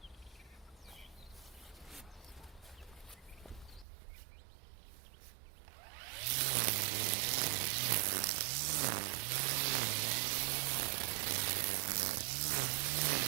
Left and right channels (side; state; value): left; drops out; at 3.9 s